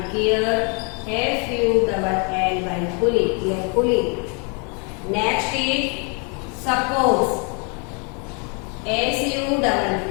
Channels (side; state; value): right; quieter; 36.0 dB